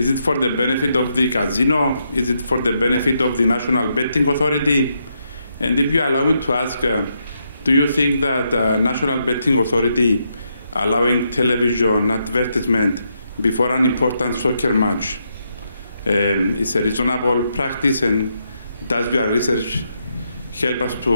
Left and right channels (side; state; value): both; inverted; correlation -0.80